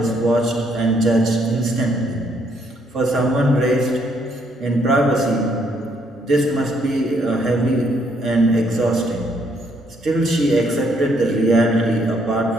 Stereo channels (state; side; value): normal; both; correlation 0.70